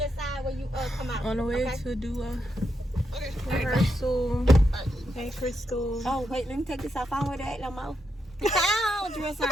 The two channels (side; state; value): both; normal; correlation 0.82